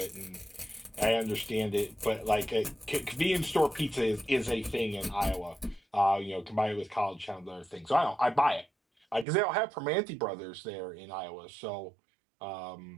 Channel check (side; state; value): left; drops out; at 9.2 s